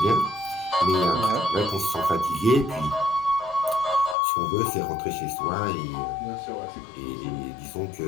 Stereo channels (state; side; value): drops out; right; at 4.2 s